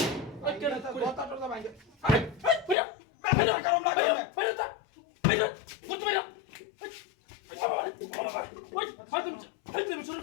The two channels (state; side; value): drops out; right; at 2.8 s